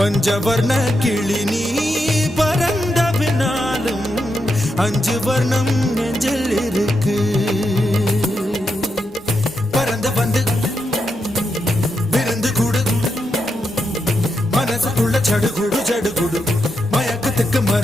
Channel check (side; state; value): both; normal; correlation 0.84